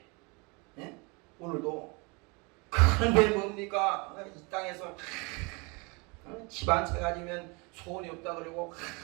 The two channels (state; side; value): quieter; left; 29.3 dB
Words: 오늘도. 그런데 뭡니까? 이 땅에서 집 한 채 가지면 소원이 없다 그러고